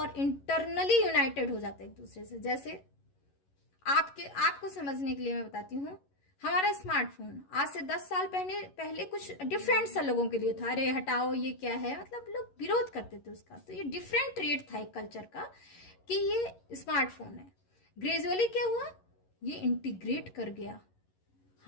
इंटरनली यूनाइटेड हो जाता है एक दूसरे से। जैसे आपको समझने के लिए मैं बताती हूँ, हमारा स्मार्टफोन आज से 10 साल पहले कुछ डिफरेंट सा लोगों के लिए था, अरे हटाओ ये क्या है, मतलब लोग विरोध करते थे उसका। तो ये डिफरेंट ट्रेट था एक कल्चर का कि ये स्मार्टफोन है। ग्रेजुअली क्या हुआ, ये इंटीग्रेट कर गया।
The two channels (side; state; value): right; late; 11 ms